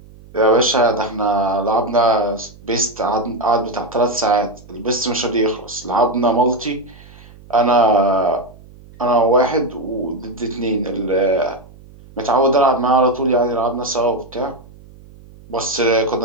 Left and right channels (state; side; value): noise; right; hum, 22 dB below the sound